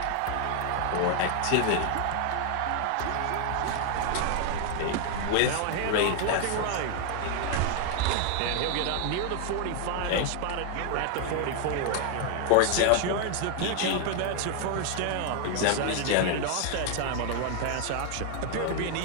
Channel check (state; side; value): different; both; correlation 0.00